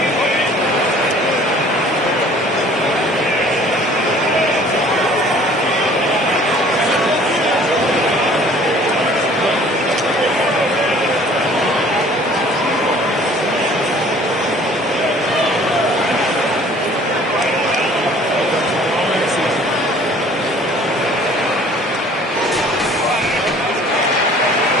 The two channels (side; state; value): both; normal; correlation 0.52